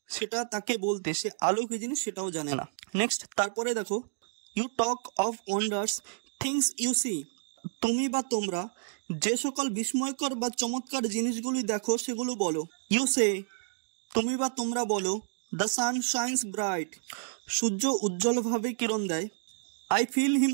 সেটা তাকে বলতে সে আলো কি জিনিস সেটাও জানে না। নেক্সট, তারপরে দেখো, you talk of wonders things you see, তুমি বা তোমরা যে সকল বিস্ময়কর বা চমৎকার জিনিসগুলি দেখো সেগুলো বলো। ইউ সে, তুমি বা তোমরা বলো, দ্য সান শাইন্স ব্রাইট, সূর্য উজ্জ্বলভাবে কিরণ দেয়। আই ফিল হিম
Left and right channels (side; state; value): left; silent; digital silence